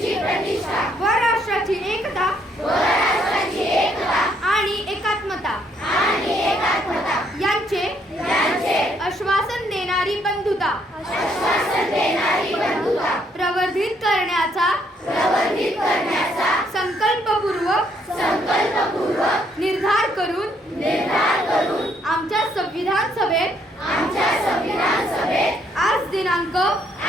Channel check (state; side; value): normal; both; correlation 0.70